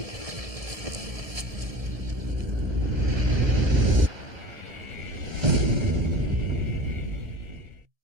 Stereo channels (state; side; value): late; left; 1.7 ms